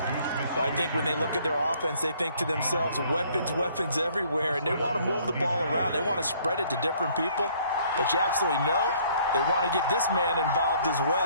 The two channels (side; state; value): both; inverted; correlation -0.61